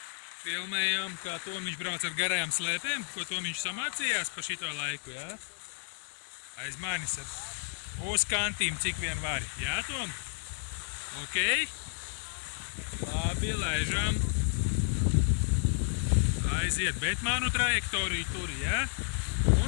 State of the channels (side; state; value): right; silent; digital silence